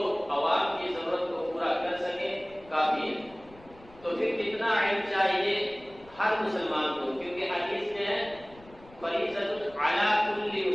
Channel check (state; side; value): noise; left; rumble, 24 dB below the sound